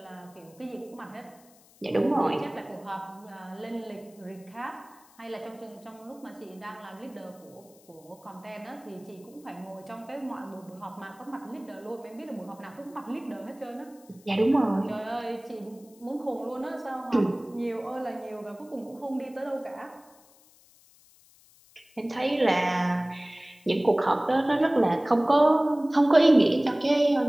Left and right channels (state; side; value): noise; left; hiss, 28 dB below the sound